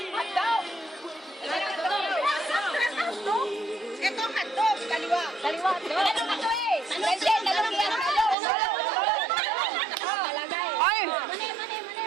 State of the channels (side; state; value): left; drops out; at 8.3 s